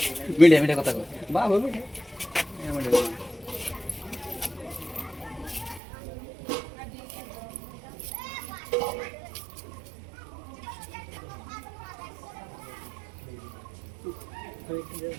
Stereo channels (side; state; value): left; drops out; at 5.8 s